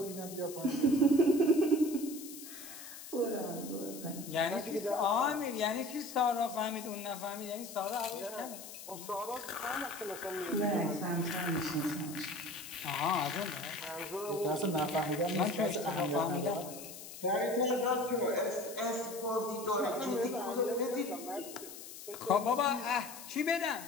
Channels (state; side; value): noise; left; hiss, 13 dB below the sound